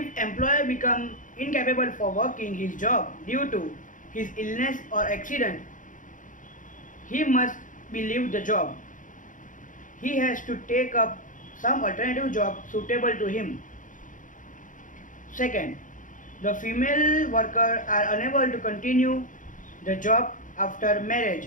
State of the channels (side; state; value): right; late; 0.38 ms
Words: employer become incapable for working his job due to his illness or accident, he must be leave the job. He has to take up some alternative job suitable to him. Second, the female worker are unable to continue the job after